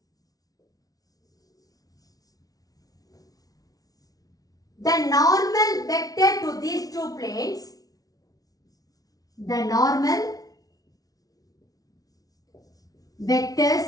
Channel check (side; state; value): right; late; 0.18 ms